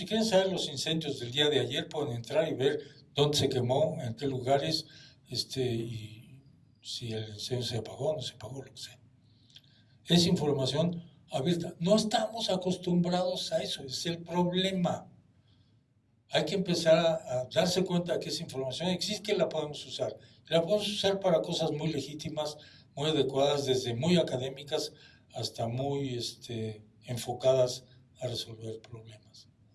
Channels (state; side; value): identical; both; correlation 1.00